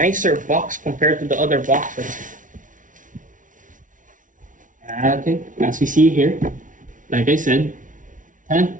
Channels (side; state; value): left; late; 0.38 ms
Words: box compared to the other boxes. Okay, as we see here, like I said,